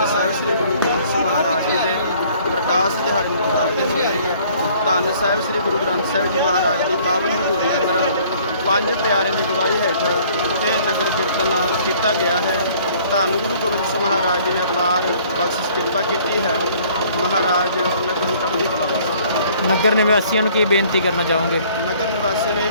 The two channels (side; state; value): both; inverted; correlation -0.57